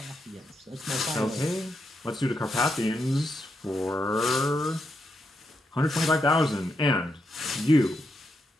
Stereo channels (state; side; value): normal; both; correlation 0.82